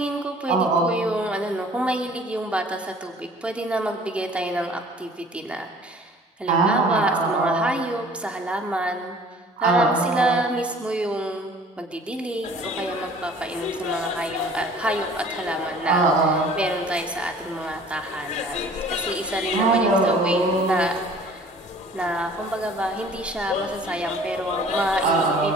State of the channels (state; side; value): normal; both; correlation 0.50